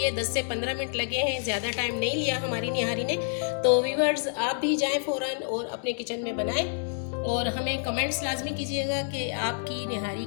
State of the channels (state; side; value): silent; right; digital silence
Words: 10 से 15 मिनट लगे हैं, ज़्यादा टाइम नहीं लिया हमारी निहारी ने। तो व्यूअर्स आप भी जाएं फ़ौरन और अपने किचन में बनाएं और हमें कमेंट्स लाजमी कीजिएगा कि आपकी निहारी